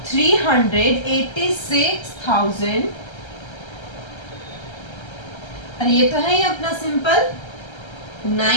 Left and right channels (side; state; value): right; late; 1.3 ms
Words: 386,000, अरे ये तो है ही अपना सिंपल